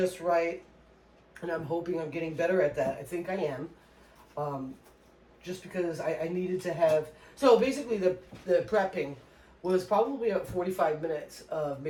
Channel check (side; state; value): both; identical; correlation 1.00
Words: right, and I'm hoping I'm getting better at that. I think I am. Just because I needed to have. So basically, the prepping was probably about 45 minutes of